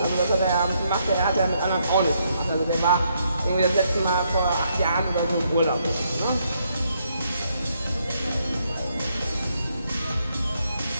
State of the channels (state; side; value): inverted; both; correlation -0.75